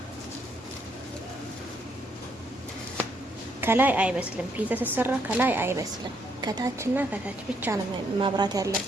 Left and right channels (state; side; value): normal; both; correlation 0.72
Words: ከላይ አይበስልም። ፒዛ ሲሰራ ከላይ አይበስልም። ከታችና ከታች ብቻ ነው ማብራት